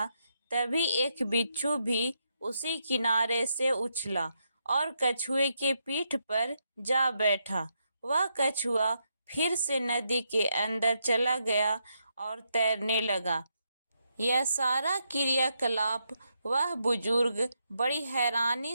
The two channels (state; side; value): inverted; both; correlation -0.81